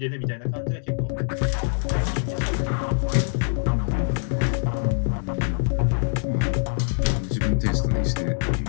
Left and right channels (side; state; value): right; silent; digital silence